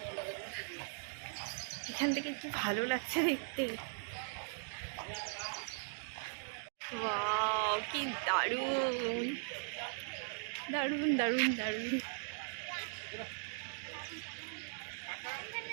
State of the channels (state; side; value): silent; left; digital silence